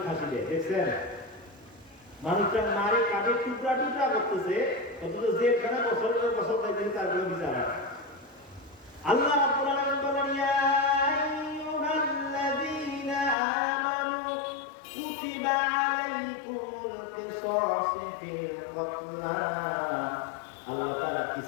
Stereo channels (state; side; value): drops out; right; at 13.4 s